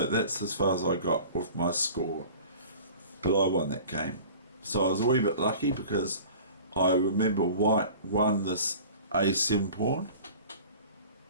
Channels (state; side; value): inverted; both; correlation -0.42